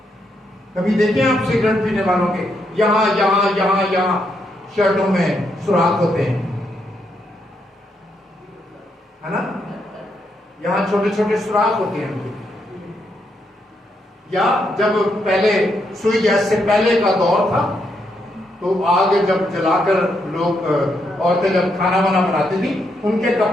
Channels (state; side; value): normal; both; correlation 0.79